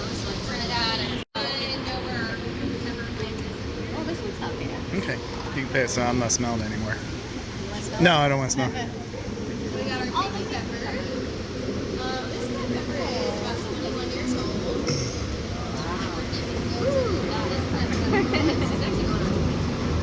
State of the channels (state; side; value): identical; both; correlation 1.00